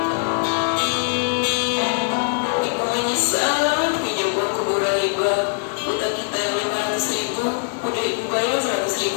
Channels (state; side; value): silent; right; 64 dB below the other